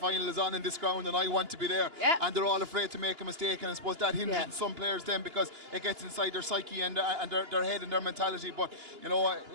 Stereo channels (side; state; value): left; late; 2.9 ms